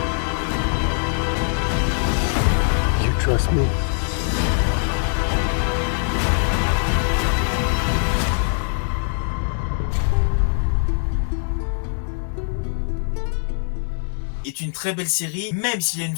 You trust me? Est une très belle série, même s'il y a une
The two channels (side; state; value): right; silent; 64 dB below the other